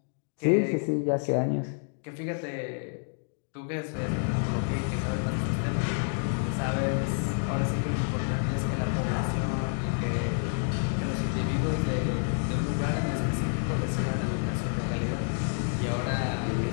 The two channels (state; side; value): silent; right; 59 dB below the other